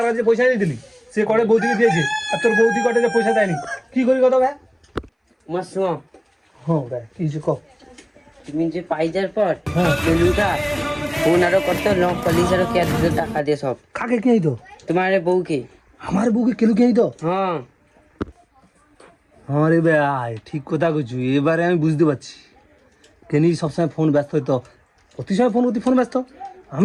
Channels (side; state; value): both; identical; correlation 1.00